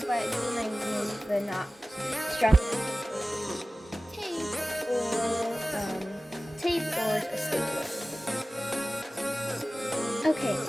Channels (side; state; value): both; normal; correlation 0.97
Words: but glue might use the not strong tape or a stapler. Okay,